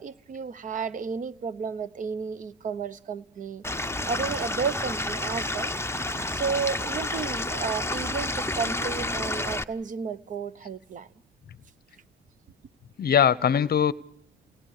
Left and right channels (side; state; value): both; normal; correlation 0.13